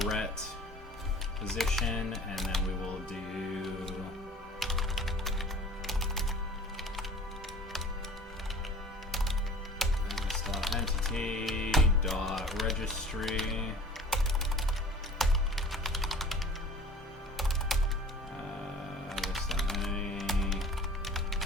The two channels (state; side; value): normal; both; correlation 0.45